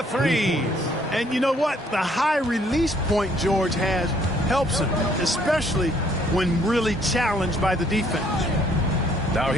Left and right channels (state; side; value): normal; both; correlation 0.64